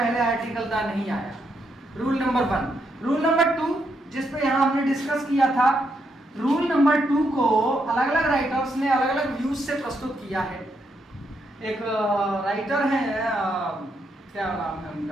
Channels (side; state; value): both; normal; correlation 0.79